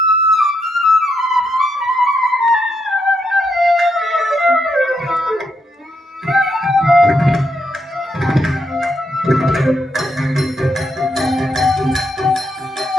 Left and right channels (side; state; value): both; normal; correlation 0.79